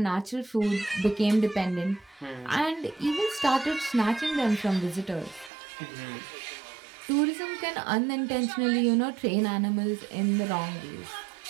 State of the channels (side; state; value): left; drops out; at 5.5 s